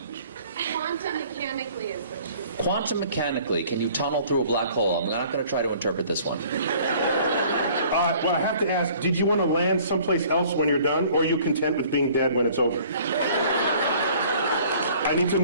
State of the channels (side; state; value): both; inverted; correlation -0.53